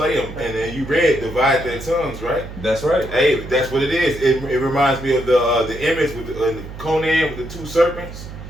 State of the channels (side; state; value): right; noise; hum, 12 dB below the sound